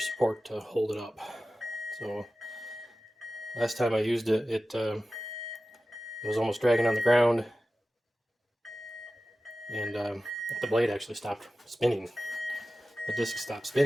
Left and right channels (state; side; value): normal; both; correlation 0.95